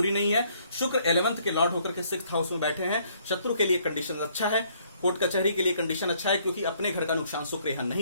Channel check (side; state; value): both; inverted; correlation -0.65